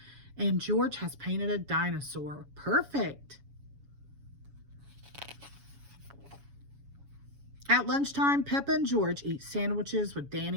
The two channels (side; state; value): left; late; 7.1 ms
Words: And George has painted a dinosaur. Perfect. At lunchtime, Peppa and George eat sandwiches with